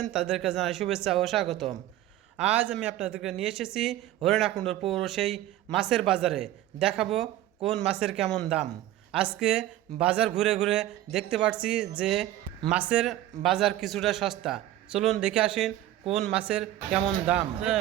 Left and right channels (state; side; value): quieter; left; 13.8 dB